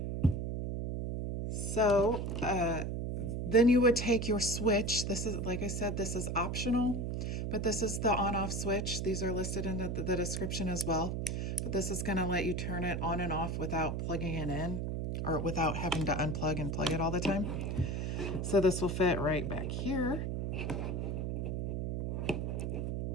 So then you would take your switch. This is, like I said, this is optional, but this is the on-off switch. These are listed in the description as well. But this is gonna let you turn it on and off without plugging it in, or without having to unplug and plug it all the time. So this will fit right back here.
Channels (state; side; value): noise; right; hum, 1 dB below the sound